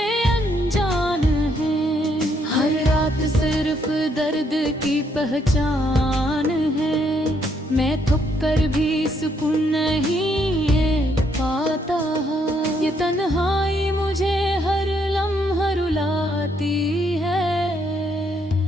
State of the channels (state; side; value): normal; both; correlation 0.72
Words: अनजान हैं, हर रात सिर्फ दर्द की पहचान है। मैं थक कर भी सुकून नहीं पाता, ये तन्हाई मुझे हर लम्हा रुलाती है।